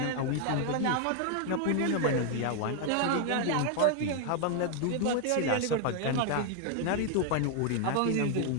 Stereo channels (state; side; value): different; both; correlation 0.00